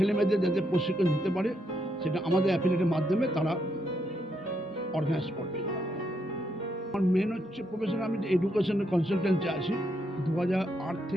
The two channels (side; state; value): both; normal; correlation 0.78